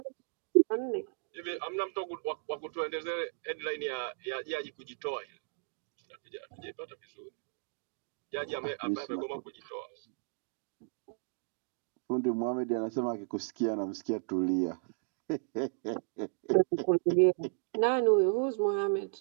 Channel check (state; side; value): silent; left; digital silence